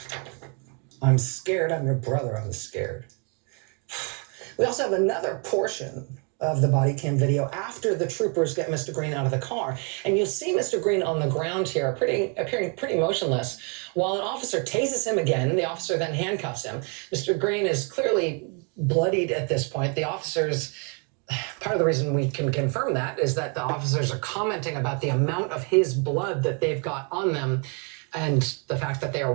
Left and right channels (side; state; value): left; quieter; 36.9 dB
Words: I'm scared, I'm your brother, I'm scared. We also have another portion of the body cam video after the troopers get Mr. Greene out of the car. And you'll see Mr. Greene on the ground here, appearing pretty motionless, while an officer tases him again. The officer then handcuffs him. Mr. Greene is clearly bloodied at this point. The officers, part of the reason we can confirm that is that the officers are commenting about the amount of his blood that they've got on them and the fact that they are